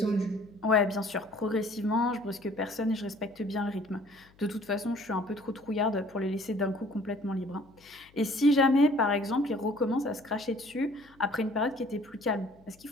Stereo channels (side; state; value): left; noise; hum, 29 dB below the sound